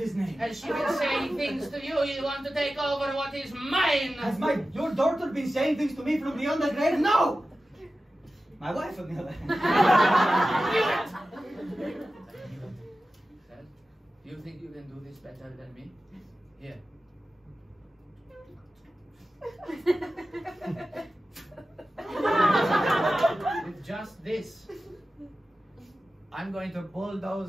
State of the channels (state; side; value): normal; both; correlation 0.94